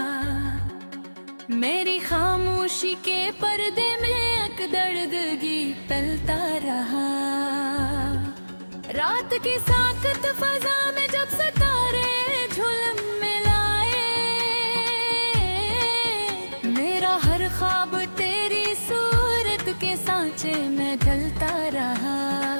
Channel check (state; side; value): inverted; both; correlation -1.00